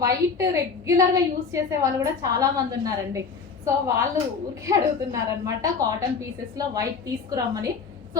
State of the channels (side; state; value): right; quieter; 5.3 dB